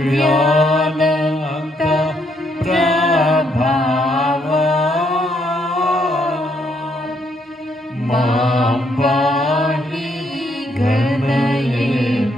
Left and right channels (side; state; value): both; normal; correlation 0.72